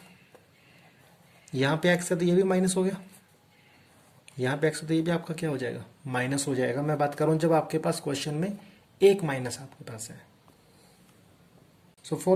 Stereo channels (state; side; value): identical; both; correlation 1.00